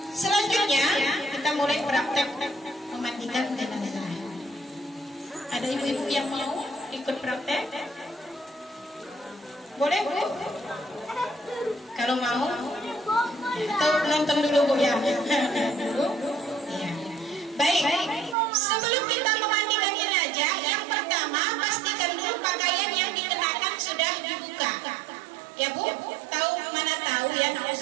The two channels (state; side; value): drops out; left; at 18.4 s